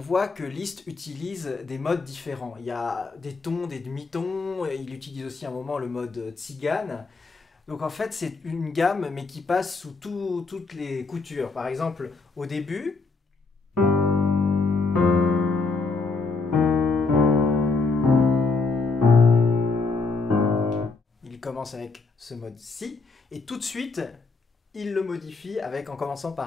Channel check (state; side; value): quieter; right; 4.0 dB